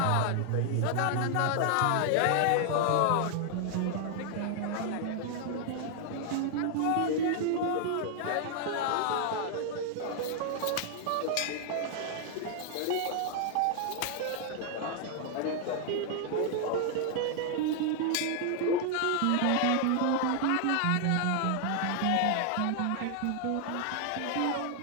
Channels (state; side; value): different; both; correlation 0.00